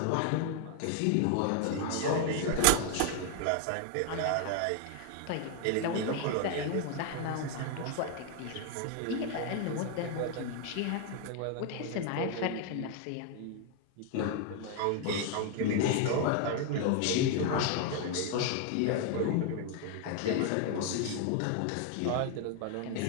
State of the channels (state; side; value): different; both; correlation 0.00